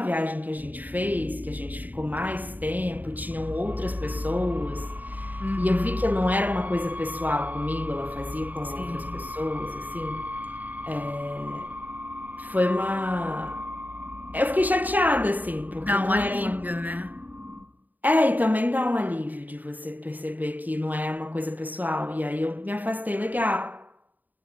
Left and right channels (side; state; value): left; late; 0.083 ms